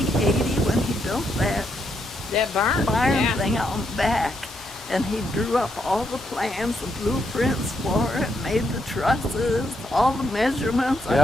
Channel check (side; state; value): both; normal; correlation 0.78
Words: 80 when he built that That barn. barn Yeah. thing out back, and he drew up all the plans, the blueprints for it, made the trusses, all the measurements. I